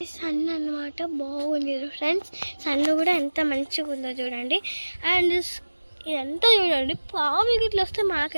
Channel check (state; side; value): inverted; both; correlation -1.00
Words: సన్ అనమాట. బాగుంది ఫ్రెండ్స్, సన్ కూడా ఎంత మంచిగా ఉందో చూడండి. అండ్ ఇదంతా చూడండి, పాము ఇట్లా వస్తే